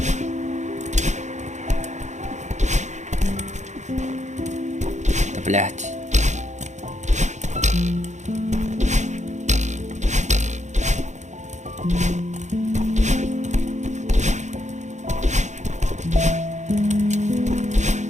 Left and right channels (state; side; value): late; left; 0.34 ms